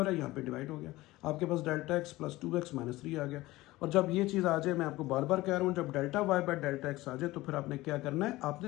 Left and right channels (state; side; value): quieter; right; 18.5 dB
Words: रहा है, यहाँ पे डिवाइड हो गया, आपके पास delta X plus 2x minus 3 आ गया। और जब ये चीज़ आ जाए, मैं आपको बार बार कह रहा हूँ, जब delta Y by delta X आ जाए तो फिर आपने क्या करना है,